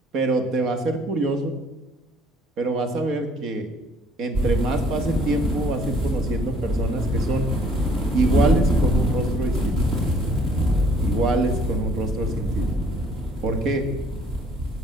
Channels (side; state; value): both; normal; correlation 0.60